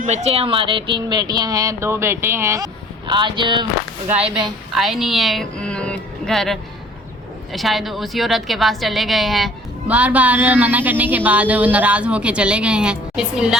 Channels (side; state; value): both; normal; correlation 0.52